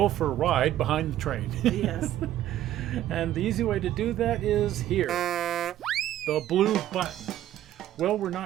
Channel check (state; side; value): quieter; left; 12.8 dB